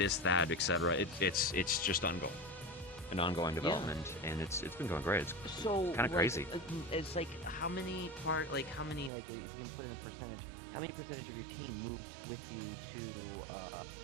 that, etc. It's just ongoing development, and it's been going great. It's So kind of crazy. It's like how many like if you can put in a percentage, how many percentage of your team moved with you to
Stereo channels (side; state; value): left; drops out; at 9.1 s